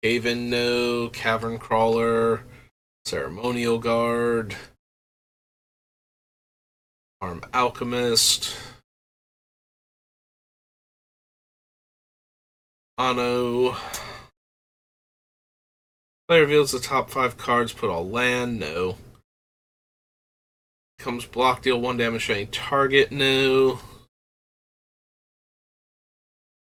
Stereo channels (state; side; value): identical; both; correlation 1.00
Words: Haven, no. Cavern Crawler. Ceremonial Guard. Arm Alchemist. Mono. Player reveals the top 5 cards, put all land, no. Comes block, deal 1 damage to any target, no.